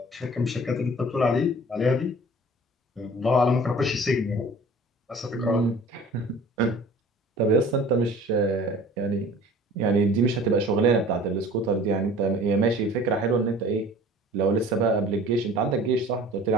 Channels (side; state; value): both; normal; correlation 0.46